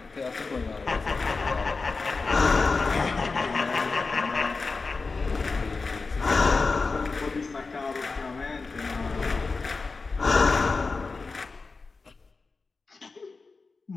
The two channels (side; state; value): right; quieter; 4.2 dB